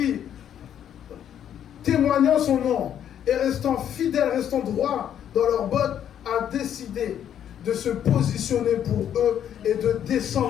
témoignant son nom et restant fidèles, restant droits dans leurs bottes, a décidé de se positionner pour eux et de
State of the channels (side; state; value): right; quieter; 9.8 dB